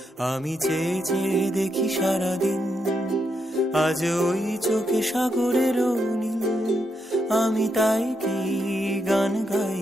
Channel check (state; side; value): normal; both; correlation 0.81